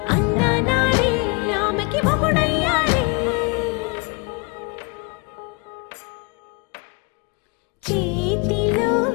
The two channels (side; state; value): right; quieter; 29.8 dB